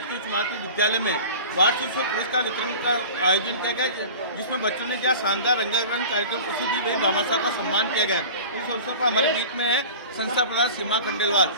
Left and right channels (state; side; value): inverted; both; correlation -0.38